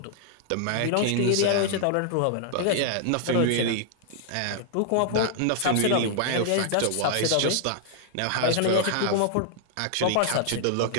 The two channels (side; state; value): both; different; correlation -0.01